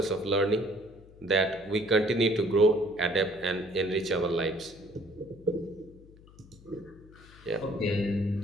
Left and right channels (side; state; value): left; noise; hum, 23 dB below the sound